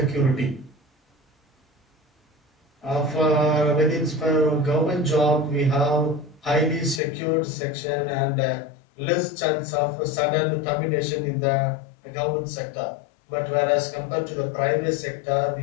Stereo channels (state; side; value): drops out; right; at 7.0 s